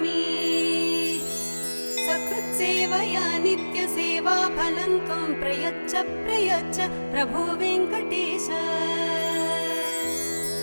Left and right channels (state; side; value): inverted; both; correlation -1.00